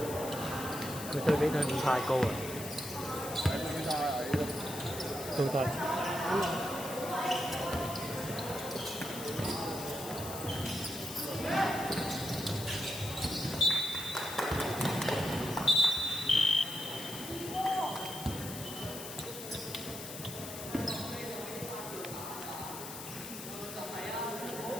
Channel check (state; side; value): noise; left; hiss, 10 dB below the sound